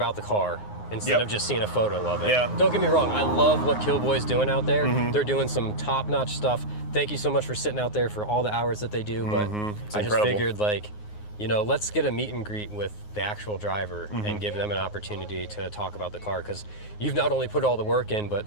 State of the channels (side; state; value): right; late; 9.6 ms